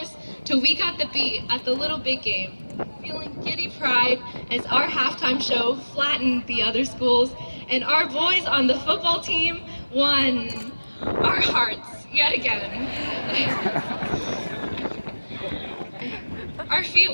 till we got the beat at the Little Big Game, feeling giddy pride as our halftime show flattened the other schools and our boys on the football team won our hearts yet again. Our feet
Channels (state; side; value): inverted; both; correlation -1.00